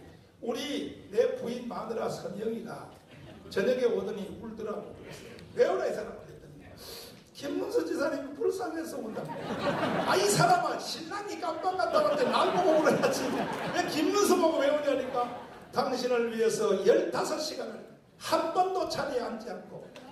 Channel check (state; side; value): identical; both; correlation 1.00